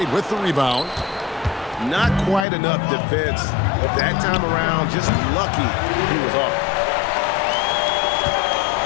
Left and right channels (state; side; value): drops out; right; at 2.5 s